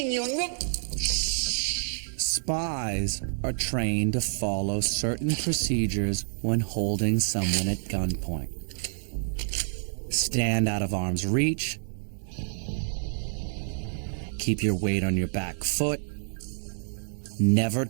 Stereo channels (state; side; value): silent; left; digital silence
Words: you. Spies are trained to follow certain procedures when holding someone at gunpoint. Stand out of arm's reach. Keep your weight on your back foot. Never